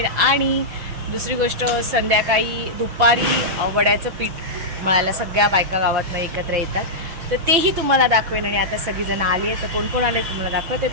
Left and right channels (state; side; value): late; left; 6.1 ms